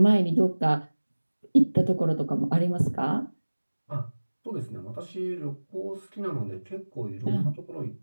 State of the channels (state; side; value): inverted; both; correlation -1.00